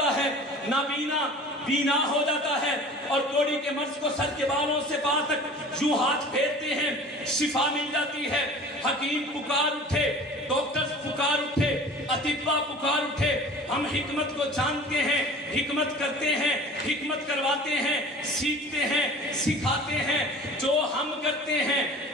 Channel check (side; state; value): both; normal; correlation 0.42